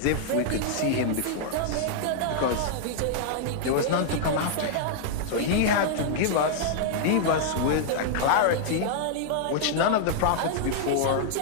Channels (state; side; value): different; both; correlation -0.01